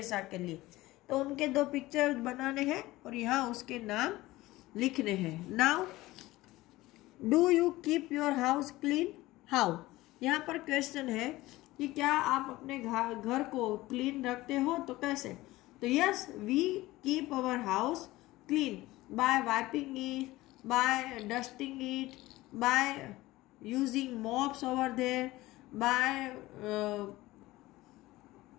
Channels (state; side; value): quieter; right; 18.3 dB